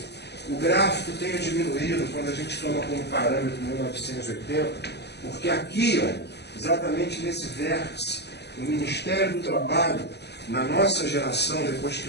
o gráfico tenha diminuído quando a gente toma como parâmetro 1980, porque aqui, ó, exatamente nesse vértice, o Ministério do Trabalho, na nossa geração, depois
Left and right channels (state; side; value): late; right; 0.49 ms